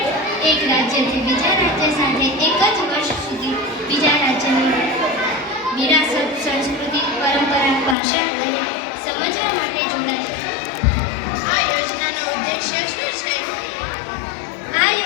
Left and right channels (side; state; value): right; drops out; at 8.0 s